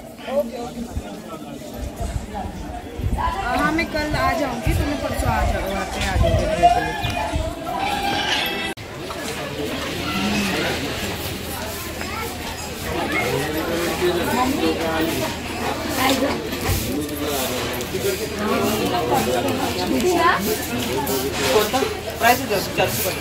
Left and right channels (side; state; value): both; identical; correlation 1.00